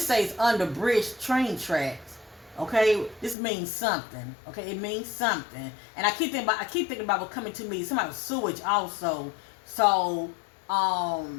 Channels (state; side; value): drops out; right; at 3.4 s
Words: under bridge, train tracks. Okay, this means something. Okay, it means something. And I keep thinking about what's coming to me. Somebody with sewage also. So